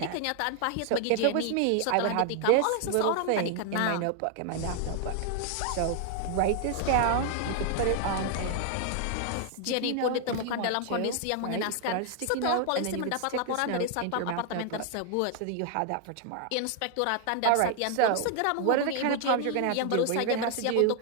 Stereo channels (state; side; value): different; both; correlation 0.00